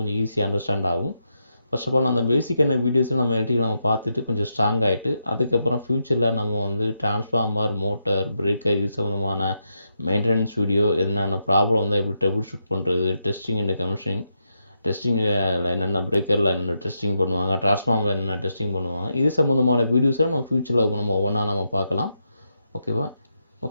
கொஞ்சம் ஈஸியாக அண்டர்ஸ்டாண்ட் ஆகும். ஃபர்ஸ்ட் ஆஃப் ஆல் அந்த பேசிக்கான வீடியோஸில் நம்ம எலக்ட்ரிக்கல் நம்ம பார்த்துட்டு கொஞ்சம் ஸ்ட்ராங் ஆகிட்டு அதுக்கப்புறம் ஃப்யூச்சரில் நம்ம வந்து டிரான்ஸ்ஃபார்மர், மோட்டர், பிரேக்கர் இது சம்மந்தமான மெயின்டெனன்ஸ் வீடியோ, என்னென்ன ப்ராப்ளம் வந்தால் எப்படி ட்ரபிள் ஷூட் பண்ணுறது, டெஸ்டிங் அண்ட் கமிஷனிங், டெஸ்டிங்கில் என்னென்ன பிரேக்கரில் என்னென்ன டெஸ்டிங் பண்ணுவாங்க, டிரான்ஸ்ஃபார்மர் என்னென்ன டெஸ்டிங் பண்ணுவாங்க, இது சம்மந்தமான வீடியோஸை நம்ம ஃப்யூச்சரில் நம்ம ஒவ்வொன்றா நம்ம பார்க்கலாம். ஓகேவா?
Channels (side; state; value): both; inverted; correlation -0.83